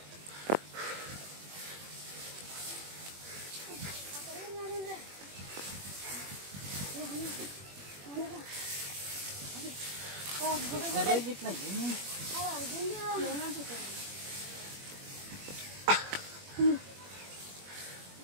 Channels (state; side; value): late; left; 21 ms